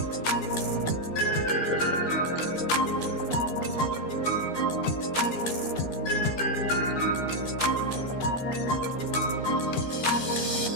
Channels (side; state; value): right; late; 12 ms